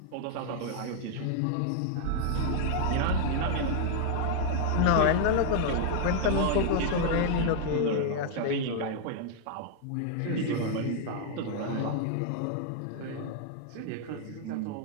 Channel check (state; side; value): different; both; correlation -0.01